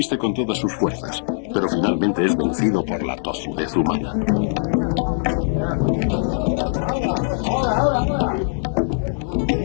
con todas sus fuerzas, pero finalmente es vencido por la tozudez humana.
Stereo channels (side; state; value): right; silent; digital silence